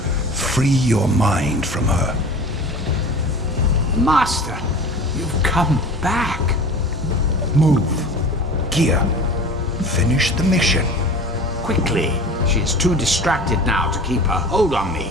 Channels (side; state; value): both; normal; correlation 0.38